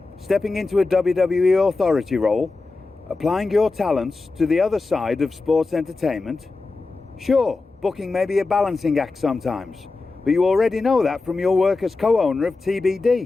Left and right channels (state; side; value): quieter; right; 3.7 dB